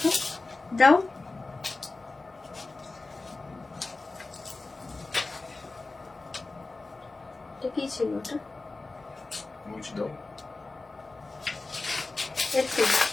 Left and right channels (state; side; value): quieter; right; 3.5 dB